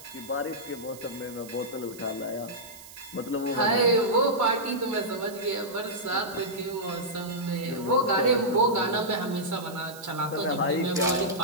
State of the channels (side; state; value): right; noise; hiss, 17 dB below the sound